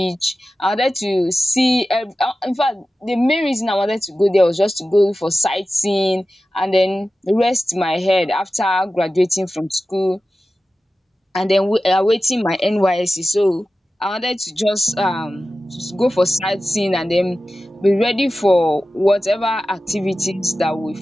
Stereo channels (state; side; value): normal; both; correlation 0.94